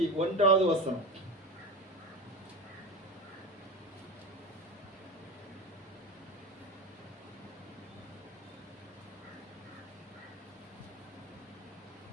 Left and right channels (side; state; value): both; normal; correlation 0.25